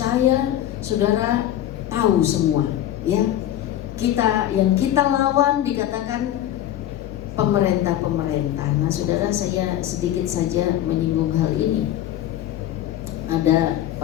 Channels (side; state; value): right; quieter; 12.2 dB